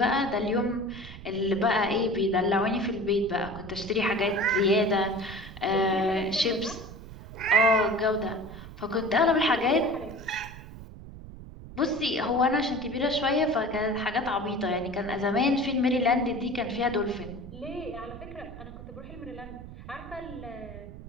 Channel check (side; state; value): right; noise; rumble, 14 dB below the sound